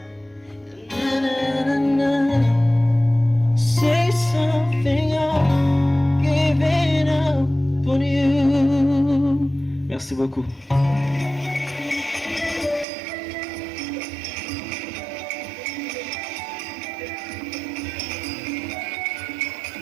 Na, na, na, na. Say something, I'm giving up on you. Merci beaucoup.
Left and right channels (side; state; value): left; drops out; at 12.9 s